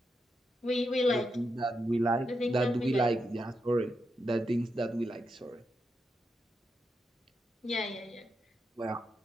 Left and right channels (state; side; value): normal; both; correlation 0.85